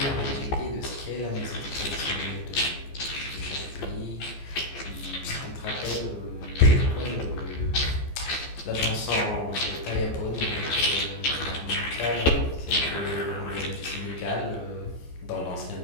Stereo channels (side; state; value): right; late; 14 ms